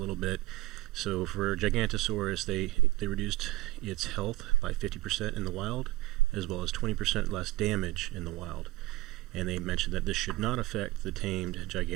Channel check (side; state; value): left; quieter; 18.3 dB